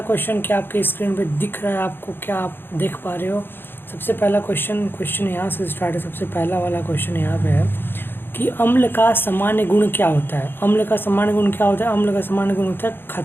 क्वेश्चन क्या आपके स्क्रीन पे दिख रहा है आपको, क्या आप देख पा रहे हो? सबसे पहला क्वेश्चन यहाँ से स्टार्ट है। सबसे पहला वाला क्वेश्चन यहाँ पे है कि अम्ल का सामान्य गुण क्या होता है। अम्ल का सामान्य गुण क्या होता है? अम्ल का सामान्य गुण होता है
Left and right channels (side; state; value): right; late; 0.10 ms